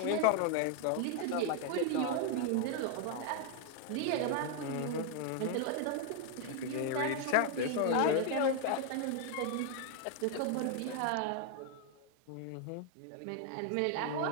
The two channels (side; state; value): both; different; correlation 0.00